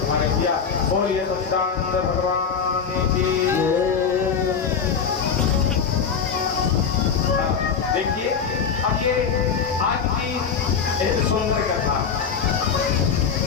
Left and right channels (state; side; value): quieter; right; 6.4 dB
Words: किया। बोलिए सच्चिदानंद भगवान की। देखिए अब ये आज की एक सुंदर कथा,